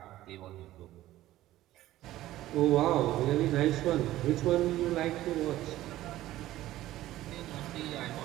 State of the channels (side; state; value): left; quieter; 15.0 dB